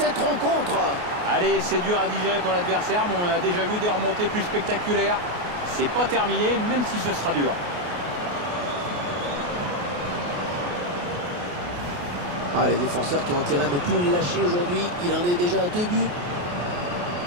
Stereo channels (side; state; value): left; late; 28 ms